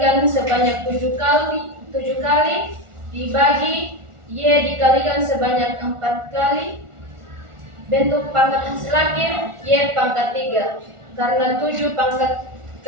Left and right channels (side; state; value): left; late; 1.4 ms